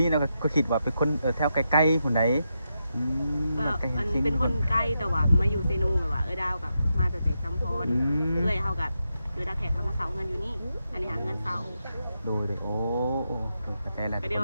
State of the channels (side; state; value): both; inverted; correlation -0.85